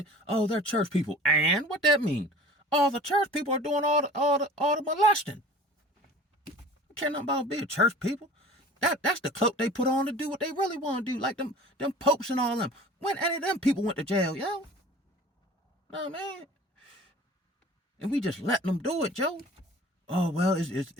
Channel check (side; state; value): both; normal; correlation 0.43